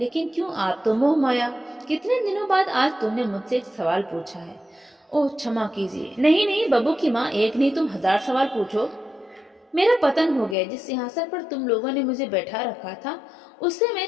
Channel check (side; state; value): right; drops out; at 10.6 s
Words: क्यों, आप तो मोह माया। कितने दिनों बाद आज तुमने मुझसे एक सवाल पूछा है। ओह, क्षमा कीजिए। नहीं नहीं बब्बू की माँ, एक नहीं तुम 1000 सवाल पूछो। मेरा पतन हो गया। जिस सिंहासन पर तुम लोगों ने मुझे बैठा रखा था उससे मैं